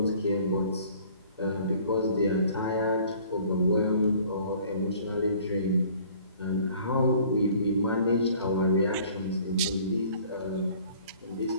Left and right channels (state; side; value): inverted; both; correlation -0.53